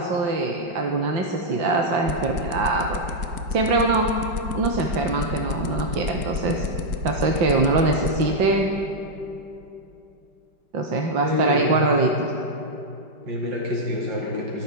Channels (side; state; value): left; late; 5.1 ms